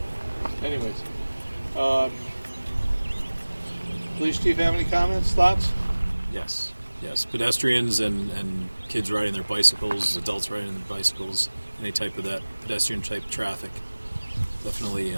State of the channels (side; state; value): both; inverted; correlation -1.00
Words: So, anyways, police chief, have any comments, thoughts? Yes. Pedestrians and kids riding their bicycles, adults riding their bicycles, any type of that pedestrian type traffic definitely